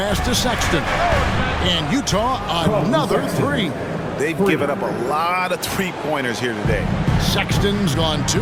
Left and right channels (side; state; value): both; identical; correlation 1.00